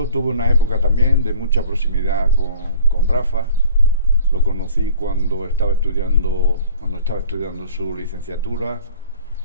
tuve una época también de mucha proximidad con Rafa. Lo conocí cuando estaba estudiando su licenciatura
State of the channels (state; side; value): inverted; both; correlation -0.47